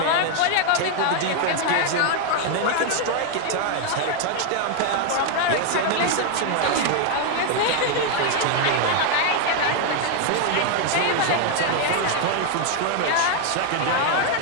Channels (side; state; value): both; different; correlation 0.00